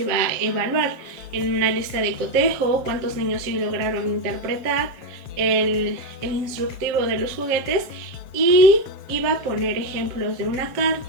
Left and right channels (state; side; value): late; left; 7.4 ms